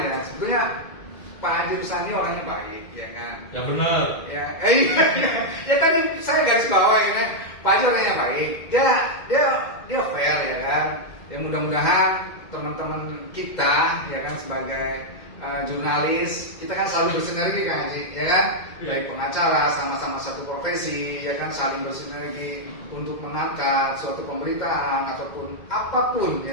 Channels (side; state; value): right; late; 2.1 ms